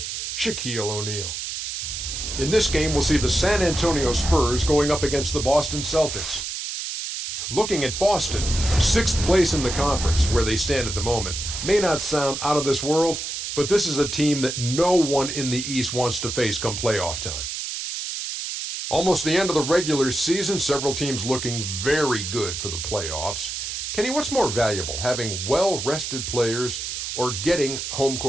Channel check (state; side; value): noise; right; hiss, 5 dB below the sound